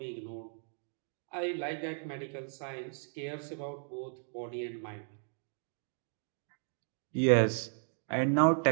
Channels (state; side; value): silent; left; 54 dB below the other